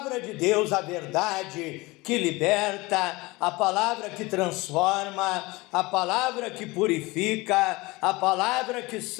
de Deus, a verdade que liberta, a palavra que transforma, a palavra que purifica, a palavra que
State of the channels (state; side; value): quieter; right; 22.5 dB